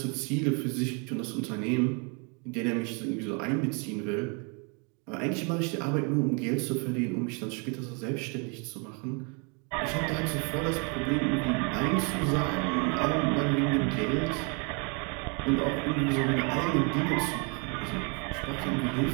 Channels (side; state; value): left; quieter; 34.9 dB